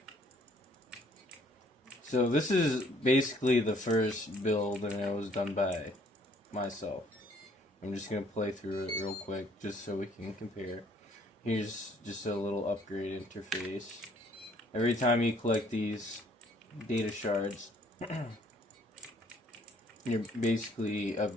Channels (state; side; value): normal; both; correlation 0.62